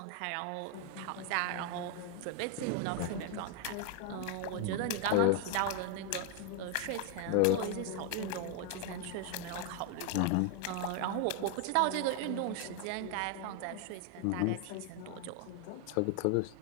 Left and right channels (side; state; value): both; different; correlation 0.01